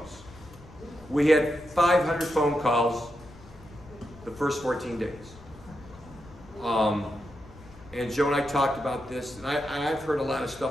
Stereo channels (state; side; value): noise; left; rumble, 20 dB below the sound